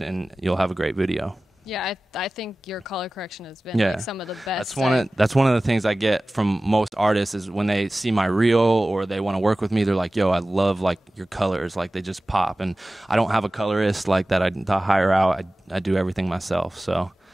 you'll have a great video. Yeah, I think your color correction has been like some of the best. That's one of the things I get from most artists is when they see my reel or they want to work with me, they're like, yo, I love like your colors, like they just pop. And I don't have a colorist like that I hire out. I do everything myself. So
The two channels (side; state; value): both; normal; correlation 0.97